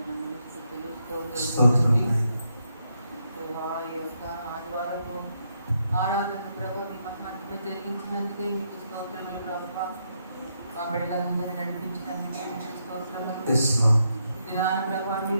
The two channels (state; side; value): inverted; both; correlation -0.79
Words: ఆరాధన ప్రభావ మీ మధ్యలో జరిగించినందుకే మీకు స్తోత్రములు ప్రభువా. మా బిడ్డలందరినీ నడిపించినందుకే మీకు స్తోత్రములు. దినాన ప్రభావ